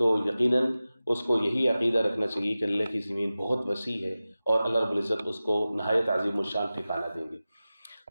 یقیناً اس کو یہی عقیدہ رکھنا چاہیے کہ اللہ کی زمین بہت وسیع ہے اور اللہ رب العزت اس کو نہایت عظیم الشان ٹھکانہ دیں گے۔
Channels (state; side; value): inverted; both; correlation -0.96